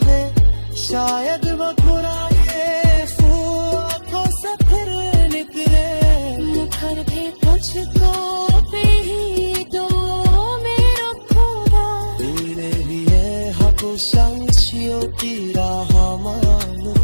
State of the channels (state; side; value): inverted; both; correlation -1.00